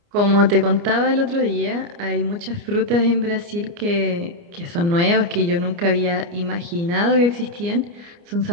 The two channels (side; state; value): left; late; 29 ms